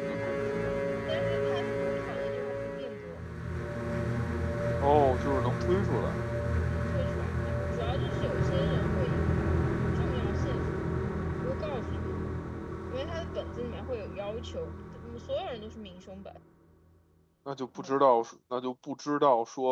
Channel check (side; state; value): both; identical; correlation 1.00